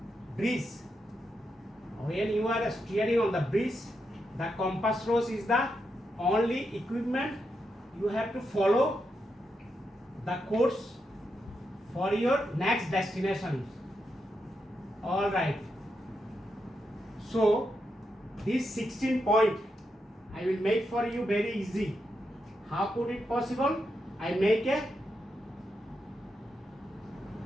breeze, the compass rose is the only equipment you have to follow the course for your next destination. All right. So this 16 point I will make for you very easy. How could it possible? I make a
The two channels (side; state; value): both; normal; correlation 0.84